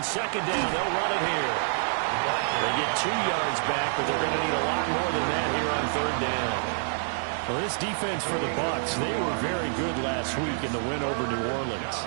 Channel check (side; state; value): left; silent; 58 dB below the other